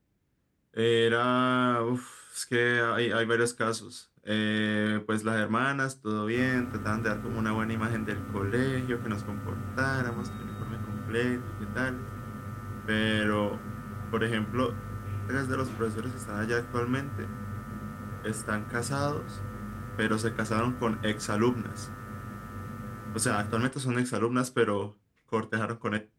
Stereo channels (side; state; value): both; identical; correlation 1.00